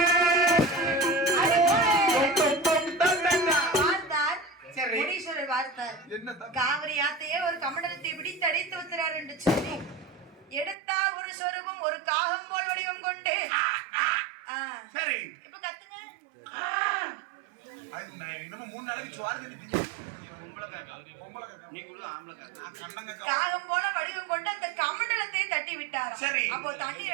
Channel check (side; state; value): left; drops out; at 10.8 s